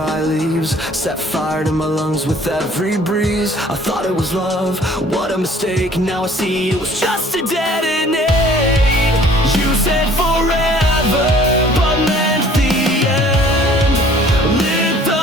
leaves, set fire to my lungs with every breeze. I thought it was love, what a mistake. Now I see it was just a detonate. You said forever, but meant the end. Lit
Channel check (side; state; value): both; normal; correlation 0.54